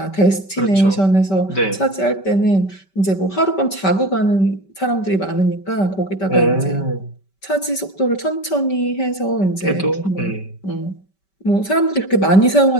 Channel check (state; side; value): late; right; 5.2 ms